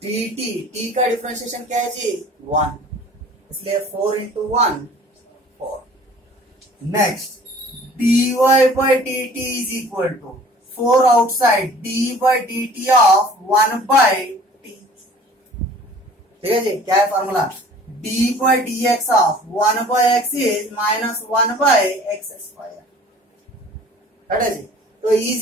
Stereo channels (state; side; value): normal; both; correlation 0.49